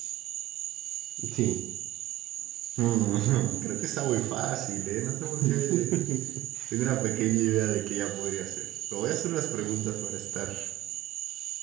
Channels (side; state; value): left; quieter; 15.1 dB